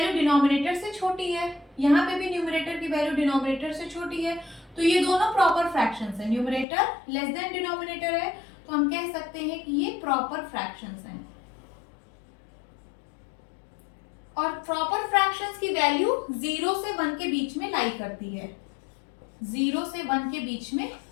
डिनोमिनेटर से छोटी है, यहाँ पे भी न्यूमरेटर की वैल्यू डिनोमिनेटर से छोटी है, तो ये दोनों प्रॉपर फ्रैक्शंस हैं। न्यूमरेटर लेस देन डिनोमिनेटर है, तो हम कह सकते हैं कि ये प्रॉपर फ्रैक्शंस हैं। और प्रॉपर फ्रैक्शंस की वैल्यू 0 से 1 के बीच में लाई करती है, 0 से 1 के बीच में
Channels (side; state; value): right; drops out; at 6.7 s